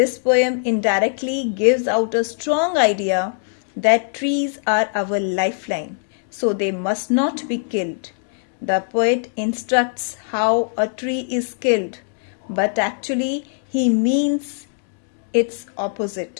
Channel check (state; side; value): silent; right; digital silence